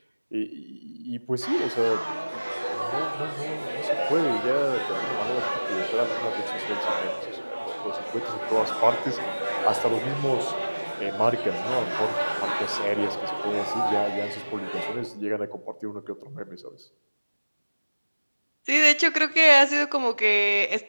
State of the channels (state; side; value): inverted; both; correlation -1.00